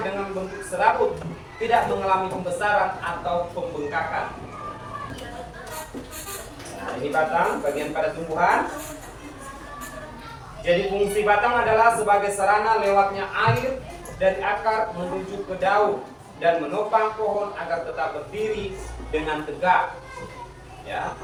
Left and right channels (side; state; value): both; identical; correlation 1.00